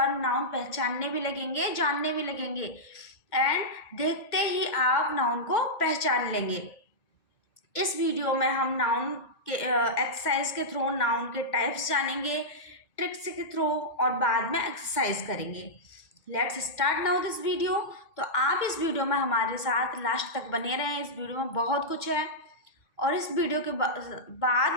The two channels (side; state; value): right; late; 2.0 ms